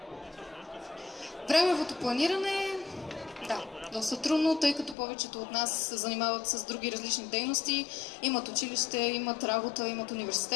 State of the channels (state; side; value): drops out; right; at 5.0 s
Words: Времевото планиране, да, доста трудно, тъй като повечето от нас се занимават с други различни дейности, имат училище, имат работа, имат